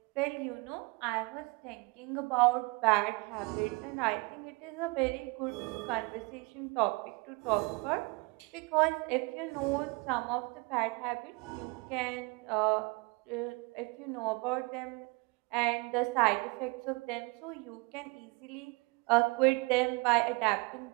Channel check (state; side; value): quieter; left; 27.7 dB